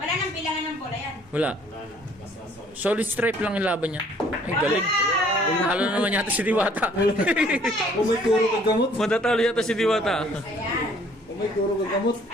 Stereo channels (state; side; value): normal; both; correlation 0.59